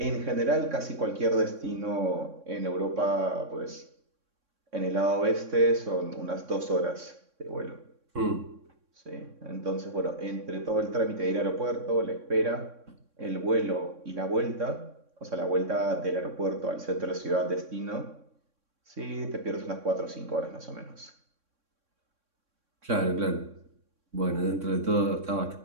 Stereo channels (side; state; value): left; late; 3.6 ms